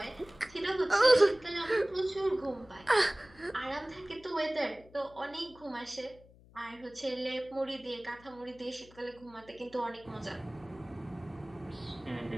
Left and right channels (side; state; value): left; noise; hum, 24 dB below the sound